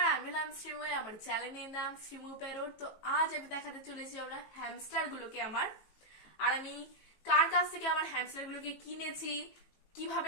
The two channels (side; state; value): right; late; 19 ms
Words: আমি হলাম শ্রীময়। আমার চ্যানেলের নাম শ্রীমু পেরোর। তো আজ আমি দেখাতে চলেছি আমরা হ্যামস্টার গুলোকে আর আমি কার কাছ থেকে আমার হ্যামস্টার গুলোকে কিনেছি,